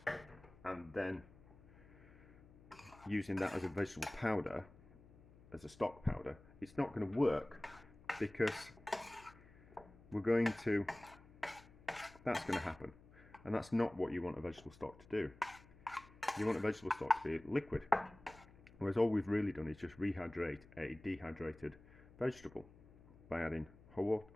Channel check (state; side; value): noise; left; hum, 22 dB below the sound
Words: and then using that as a vegetable powder, as a stock powder, it's not going to work because we're going to, that's going to happen, and that's not what you want a vegetable stock to do. You want a vegetable stock to be liquid, whereas all we've really done is just rehydrate a dehydrated vegetable by adding